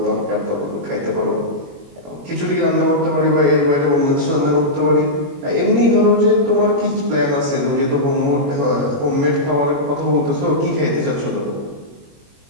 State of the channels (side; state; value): left; late; 21 ms